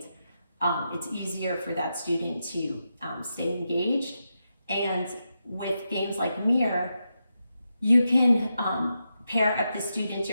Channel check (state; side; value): inverted; both; correlation -0.87